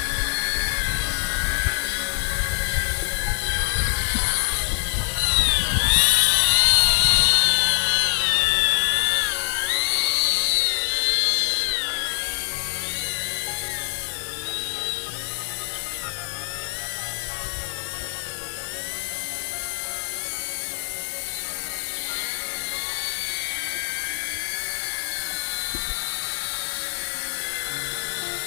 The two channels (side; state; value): right; silent; digital silence